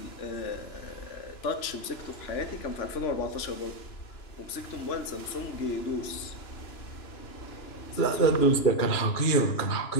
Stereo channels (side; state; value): right; late; 2.9 ms